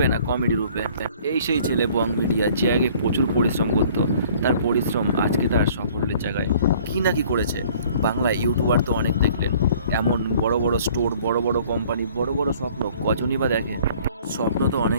না কমেডি রূপে? এই সেই ছেলে বং মিডিয়া যে আগে প্রচুর পরিশ্রম করতো, তার পরিশ্রম আজকে তার সাফল্যের জায়গায়। কী না কি করেছে, বাংলায় ইউটিউবার তো অনেক দেখলেন, এমন বড় বড় স্টোর, বড় বড় কোম্পানি, বড় বড় স্বপ্ন কজনই বা দেখে? স্বপ্ন তো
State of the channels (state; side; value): inverted; both; correlation -0.54